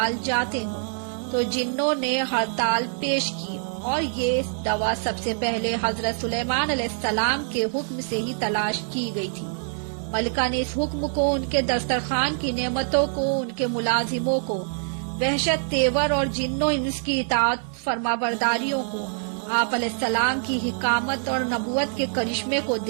جاتے ہوں، تو جنوں نے ہڑتال پیش کی اور یہ دوا سب سے پہلے حضرت سلیمان علیہ السلام کے حکم سے ہی تلاش کی گئی تھی۔ ملکہ نے اس حکم کو، ان کے دسترخوان کی نعمتوں کو، ان کے ملازموں کو، وحشت تیور اور جنوں اس کی اطاعت فرما برداریوں کو، آپ علیہ السلام کی حکامت اور نبوت کے کرشمے کو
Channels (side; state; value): left; silent; digital silence